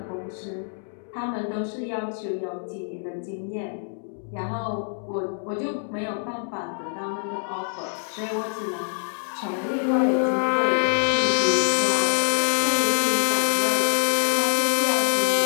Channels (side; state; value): right; silent; 62 dB below the other